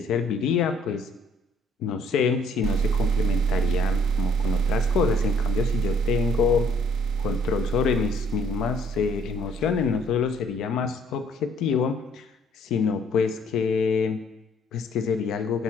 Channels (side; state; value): both; normal; correlation 0.62